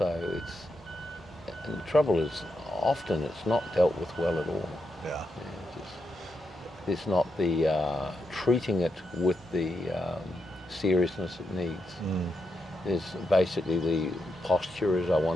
and the trouble is, often it's not dealt with well at all. There's not the treating it with the seriousness it needs. There's basically the posture is I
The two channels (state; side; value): normal; both; correlation 0.83